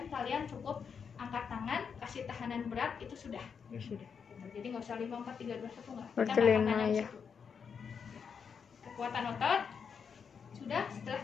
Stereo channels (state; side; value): quieter; right; 6.5 dB